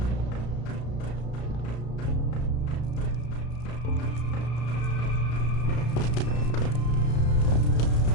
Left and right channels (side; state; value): right; late; 33 ms